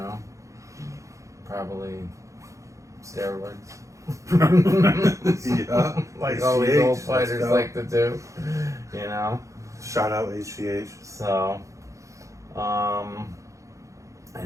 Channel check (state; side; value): late; left; 0.15 ms